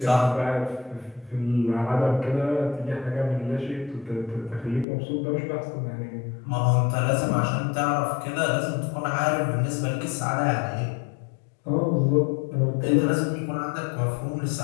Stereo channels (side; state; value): right; drops out; at 4.9 s